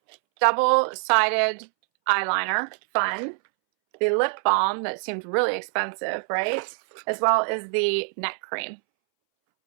double-sided eyeliner, fun. The lip balm that seemed really expensive, right? As well as the neck cream.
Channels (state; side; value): silent; left; 63 dB below the other